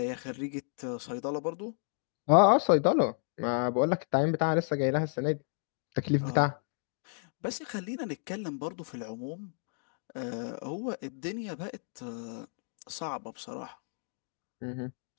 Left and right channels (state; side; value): silent; right; 56 dB below the other